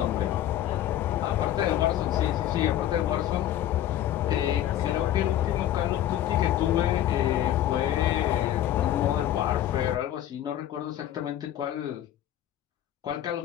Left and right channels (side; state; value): right; quieter; 12.1 dB